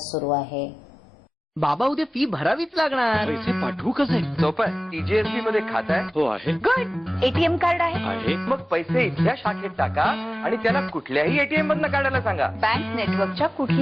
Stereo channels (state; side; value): normal; both; correlation 0.97